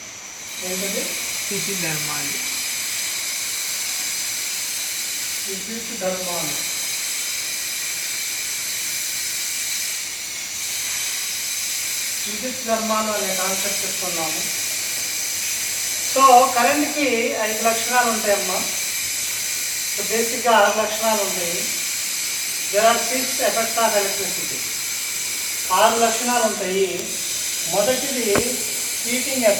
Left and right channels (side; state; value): both; identical; correlation 1.00